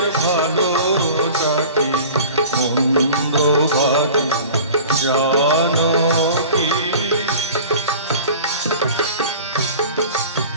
ভালোটা কি মন্দ বাকি জানো কি?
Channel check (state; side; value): inverted; both; correlation -0.41